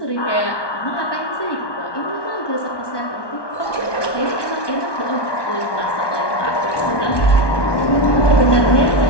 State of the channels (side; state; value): right; late; 1.2 ms